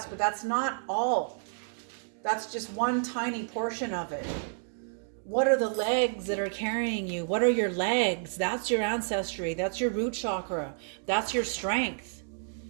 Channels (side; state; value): left; silent; digital silence